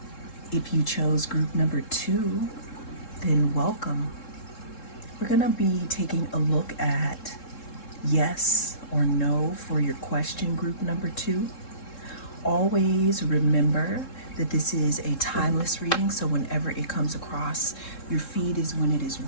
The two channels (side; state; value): right; late; 3.7 ms